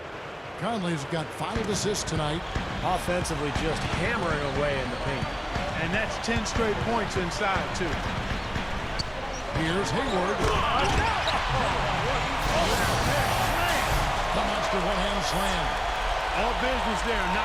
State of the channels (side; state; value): both; identical; correlation 1.00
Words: Conley's got 5 assists tonight. Offensively just hammering away in the paint. And that's 10 straight points inside, too. Here's Hayward. The monster one-hand slam. All business there,